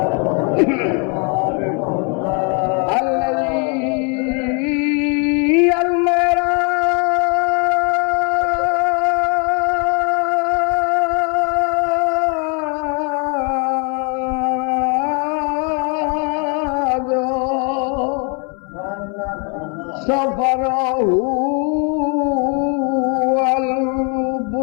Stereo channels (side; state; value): right; quieter; 36.0 dB